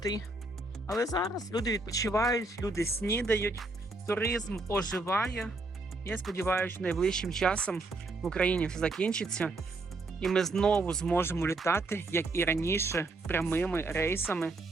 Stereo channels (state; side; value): quieter; left; 3.2 dB